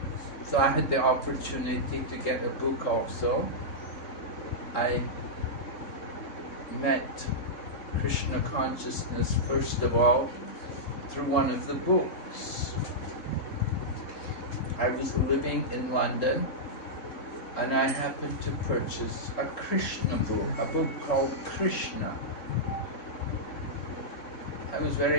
So I had the opportunity to get a book also. I met Krishna consciousness first of all through one of the books. I was living in London and I happened to purchase a Krishna book, a book called Krishna. I was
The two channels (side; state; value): right; late; 3.7 ms